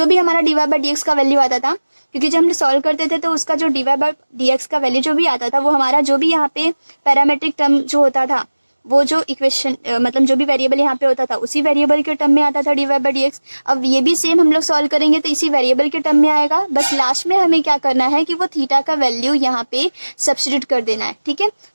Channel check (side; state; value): both; inverted; correlation -1.00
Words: भी हमारा dy/dx का वैल्यू आता था, क्योंकि जब हम सॉल्व करते थे तो उसका जो dy/dx का वैल्यू जो भी आता था वो हमारा जो भी यहाँ पे पैरामेट्रिक टर्म जो होता था, वो जो इक्वेशन मतलब जो भी वेरिएबल यहाँ पे होता था उसी वेरिएबल के टर्म में आता था dy/dx। अब ये भी सेम हम लोग सॉल्व करेंगे तो इसी वेरिएबल के टर्म में आएगा। बस लास्ट में हमें क्या करना है कि वो थीटा का वैल्यू यहाँ पे सब्स्टिट्यूट कर देना है, ठीक है।